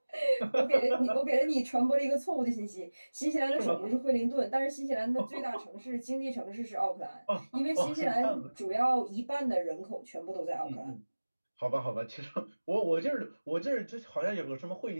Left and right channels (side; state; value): both; inverted; correlation -1.00